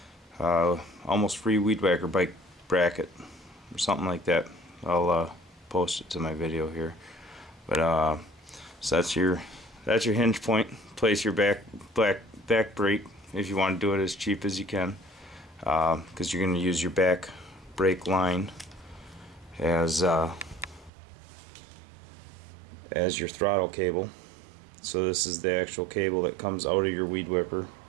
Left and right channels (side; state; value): left; drops out; at 20.9 s